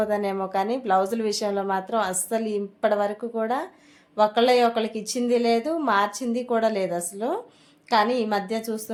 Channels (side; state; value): both; identical; correlation 1.00